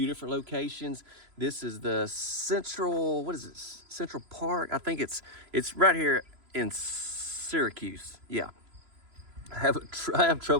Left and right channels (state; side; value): late; left; 3.0 ms